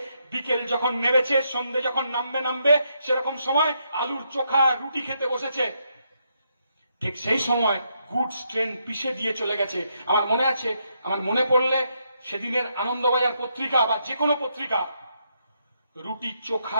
বিকেল যখন নেমেছে, সন্ধে যখন নামবে সেরকম সময় আলুর চোখা রুটি খেতে বসেছে। ঠিক সেই সময় গুডস ট্রেন পিষে দিয়ে চলে গেছে। আমার মনে আছে, আমার মনে পড়লে সেদিনের আনন্দবাজার পত্রিকা বা যে কোনো পত্রিকা, রুটি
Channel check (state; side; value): inverted; both; correlation -0.78